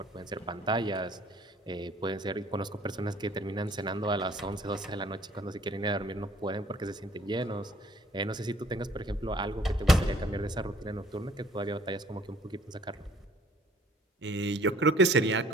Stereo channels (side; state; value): both; normal; correlation 0.57